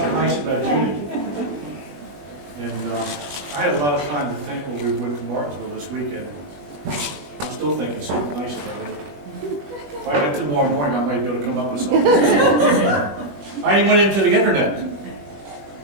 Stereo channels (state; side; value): late; left; 21 ms